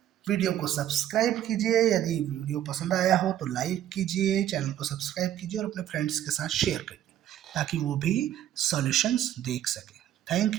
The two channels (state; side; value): quieter; left; 11.5 dB